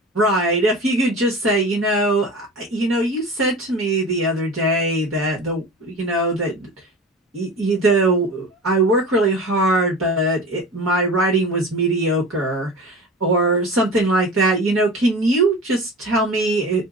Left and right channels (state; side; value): normal; both; correlation 0.34